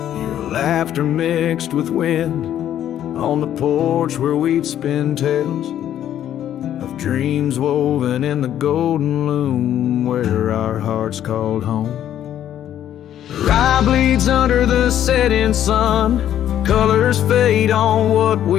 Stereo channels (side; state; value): right; quieter; 11.0 dB